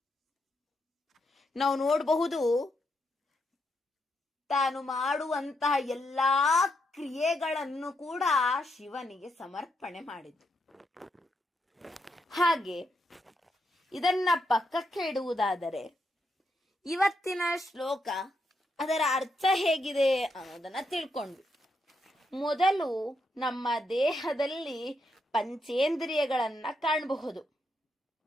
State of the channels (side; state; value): both; normal; correlation 0.80